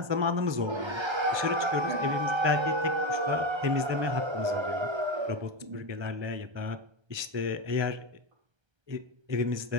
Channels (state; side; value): late; left; 1.3 ms